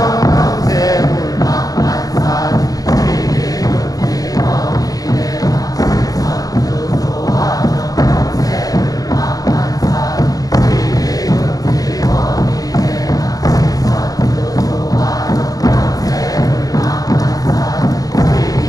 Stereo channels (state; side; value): late; right; 0.18 ms